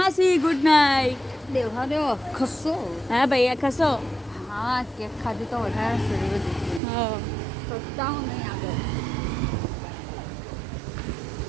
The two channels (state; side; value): drops out; left; at 6.8 s